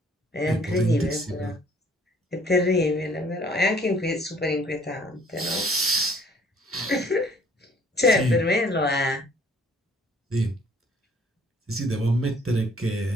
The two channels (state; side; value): normal; both; correlation 0.59